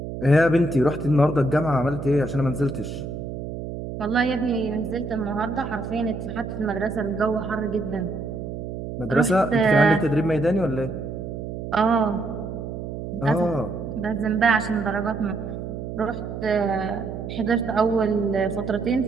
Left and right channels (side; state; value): right; noise; hum, 7 dB below the sound